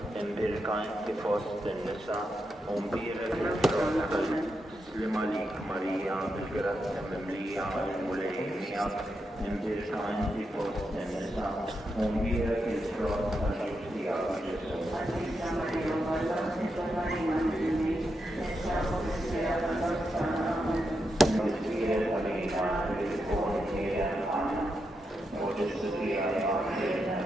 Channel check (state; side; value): normal; both; correlation 0.85